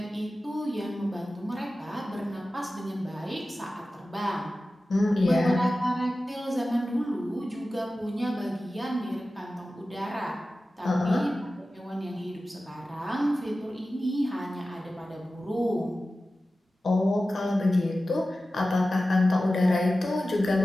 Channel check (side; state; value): both; normal; correlation 0.95